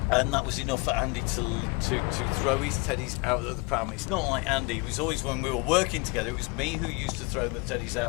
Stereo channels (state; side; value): quieter; right; 28.4 dB